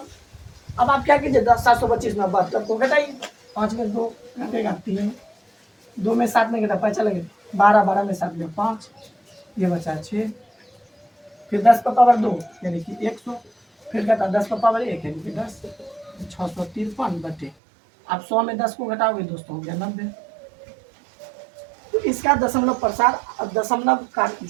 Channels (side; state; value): left; drops out; at 17.6 s